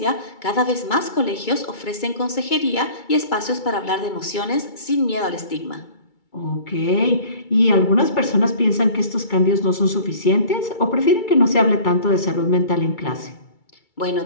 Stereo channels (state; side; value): late; right; 2.3 ms